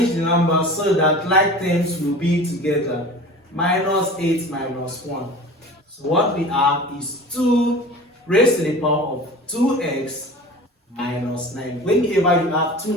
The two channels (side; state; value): both; normal; correlation 0.38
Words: the numbers so that like terms will be together. Minus 8 minus 1. So what we have is 2 raised to the power of 2x minus 9. Whenever you have two